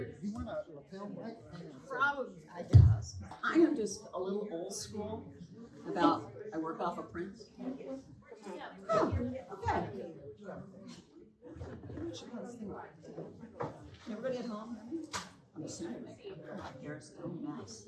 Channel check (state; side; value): identical; both; correlation 1.00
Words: you want a lapel mic? Probably, I guess. I am just a little old school about, I work off of prints. Oh, okay. Everybody at home? I'm assuming my hair is a mess.